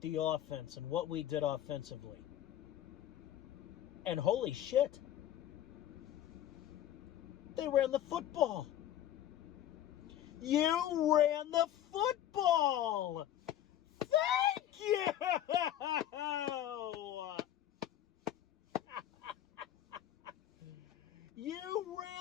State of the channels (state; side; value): quieter; right; 11.9 dB